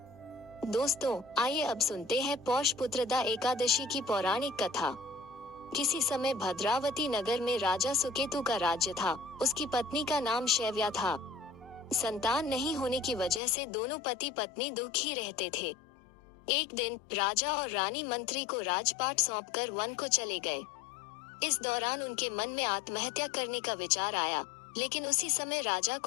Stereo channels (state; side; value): drops out; right; at 13.4 s